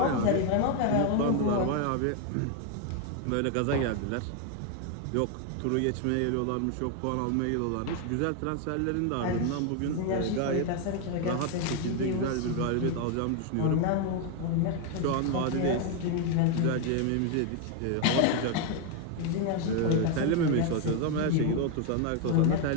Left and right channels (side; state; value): both; different; correlation 0.01